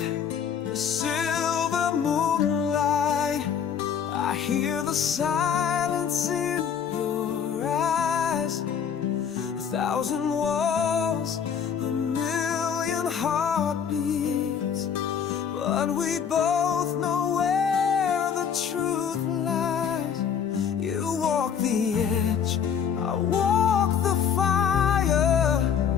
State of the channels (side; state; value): right; quieter; 7.6 dB